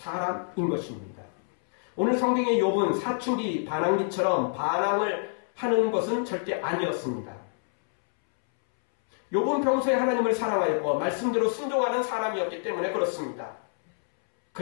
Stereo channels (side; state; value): right; silent; 60 dB below the other